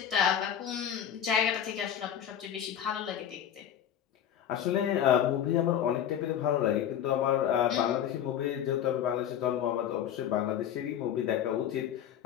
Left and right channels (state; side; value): quieter; right; 9.8 dB